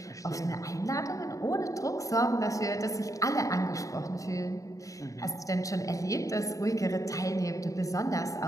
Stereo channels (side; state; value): right; late; 0.16 ms